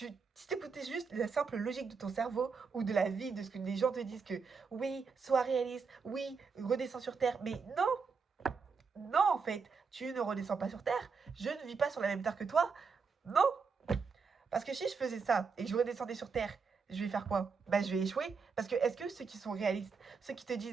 t'écoutais juste la simple logique de ton cerveau ou de la vie, de ce que les gens te disent que oui, sois réaliste, oui, redescends sur Terre, mais non, non en fait, tu ne redescends pas sur Terre, je ne vis pas sur la même Terre que toi, non, parce que si je faisais ça et que je redescendais sur Terre, je vais faire quoi? Bah, je vais échouer. Parce que est-ce que ceux qui sont réalistes, ceux qui te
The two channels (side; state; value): left; quieter; 5.2 dB